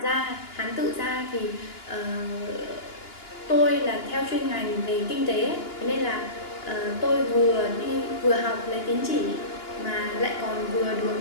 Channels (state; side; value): late; right; 2.9 ms